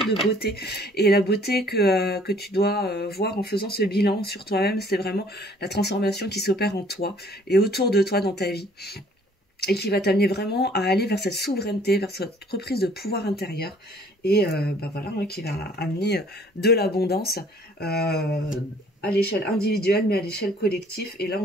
de beauté. Et la beauté que tu dois voir en faisant ce bilan sur toi-même, c'est vraiment la transformation qui s'opère en toi et autour de toi dans ta vie. Et qui va t'amener vraiment à aller vers cette souveraineté, vers cette reprise de pouvoir intérieur. Et voilà, hein, qui va amener de l'abondance à l'échelle individuelle, mais à l'échelle collective. Et là,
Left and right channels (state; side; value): normal; both; correlation 0.57